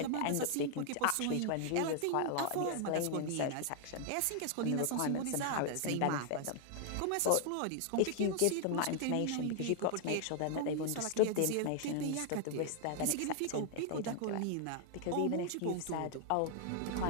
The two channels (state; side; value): different; both; correlation 0.00